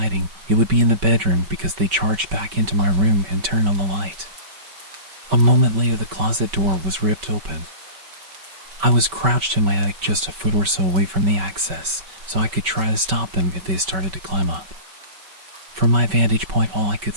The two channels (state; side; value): late; left; 5.2 ms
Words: it would be in the bedroom, because they charged back into my room and turned on the light. A moment later, the closet door was ripped open. I was crouched in my attic just a foot or so away from the access, so I could try to stop them if they started to climb up. From my vantage point, all I could